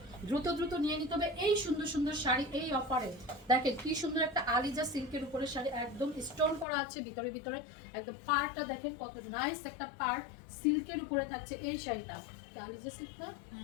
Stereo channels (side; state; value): right; drops out; at 6.7 s